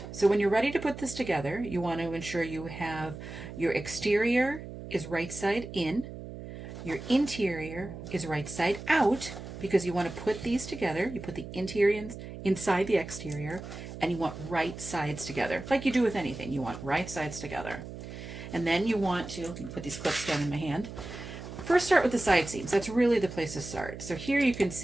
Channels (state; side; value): noise; right; hum, 11 dB below the sound